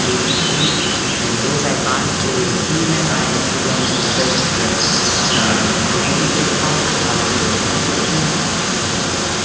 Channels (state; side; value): identical; both; correlation 1.00